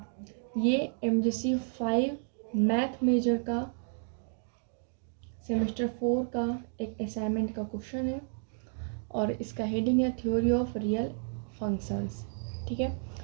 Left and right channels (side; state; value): left; silent; digital silence